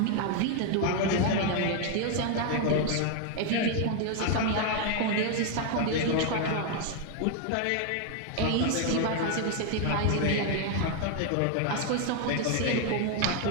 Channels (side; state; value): both; different; correlation 0.00